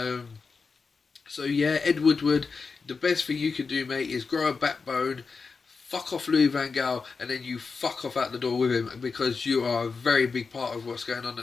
So yeah, Ed Woodward, the best thing you can do, mate, is grow a backbone, fuck off Louis van Gaal, and then you fuck off out the door with him, because you are a very big part of what's going on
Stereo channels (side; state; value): right; quieter; 4.8 dB